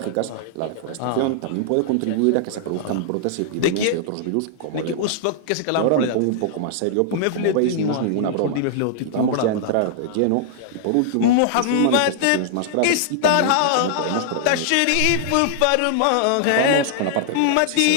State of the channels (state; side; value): different; both; correlation -0.01